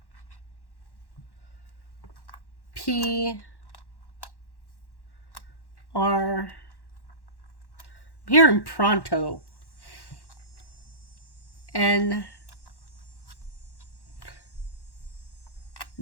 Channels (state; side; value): late; right; 1.1 ms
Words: P, R. I'm hearing pronto. N,